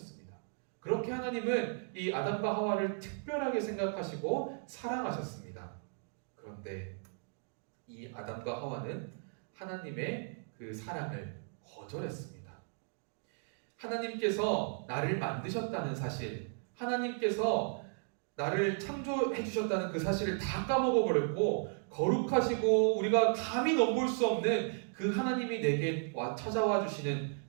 그렇게 하나님은 이 아담과 하와를 특별하게 생각하시고 사랑하셨습니다. 그런데 이 아담과 하와는 하나님의 그 사랑을 거절했습니다. 하나님께서 나를 만드셨다는 사실, 하나님께서 나를 창조해 주셨다는 그 사실을 다 까먹어 버렸고, 거룩하시고 우리가 감히 넘볼 수 없는 그 하나님이 내게 찾아와 주시는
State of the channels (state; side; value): silent; left; 54 dB below the other